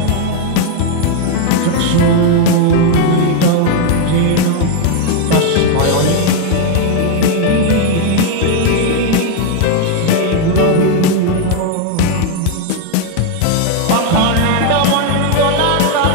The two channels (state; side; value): different; both; correlation 0.01